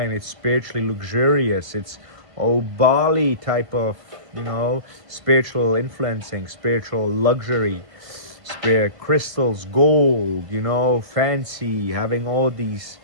it's spiritually luxurious, it's Bali type of, spiritual influencing, spiritual luxury, spirit crystals, gold, fancy, having all these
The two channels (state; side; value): late; left; 1.6 ms